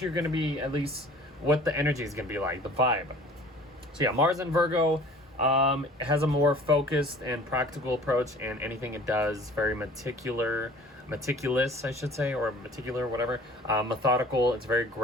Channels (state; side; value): normal; both; correlation 0.47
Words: you're going to be, at least what the energy is going to be like, the vibe. So yeah, Mars in Virgo has a more focused and practical approach, and anything it does, very meticulous, I should say, or meticular, whatever. Methodical. It's very